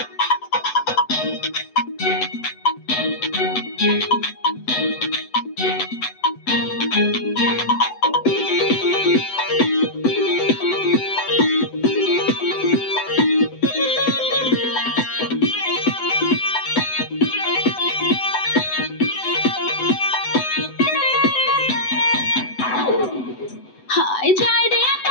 হায় যায় রে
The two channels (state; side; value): late; right; 7.9 ms